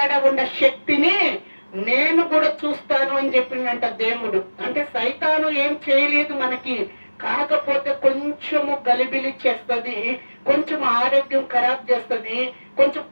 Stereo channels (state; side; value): inverted; both; correlation -1.00